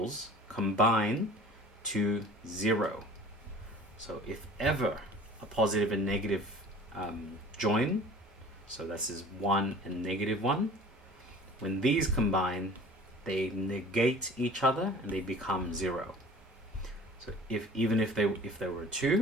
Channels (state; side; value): normal; both; correlation 0.45